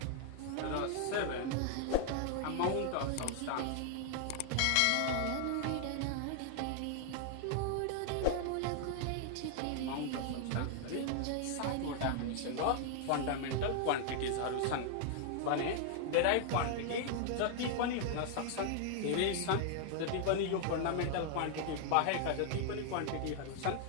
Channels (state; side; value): different; both; correlation 0.00